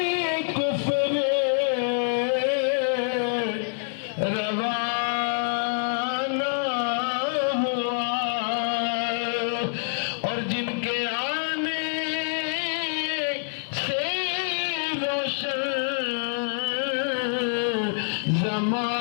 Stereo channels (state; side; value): silent; right; 61 dB below the other